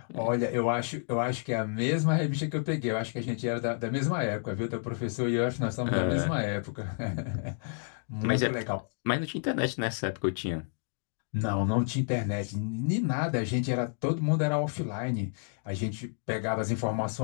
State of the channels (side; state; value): right; silent; digital silence